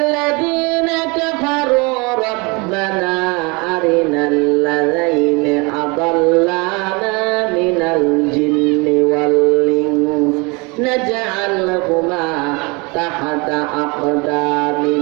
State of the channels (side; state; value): left; quieter; 28.3 dB